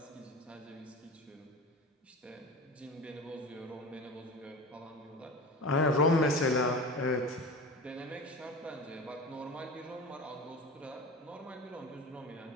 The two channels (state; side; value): normal; both; correlation 0.32